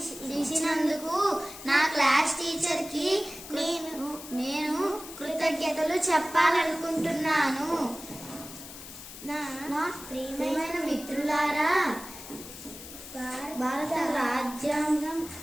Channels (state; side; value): noise; left; hiss, 13 dB below the sound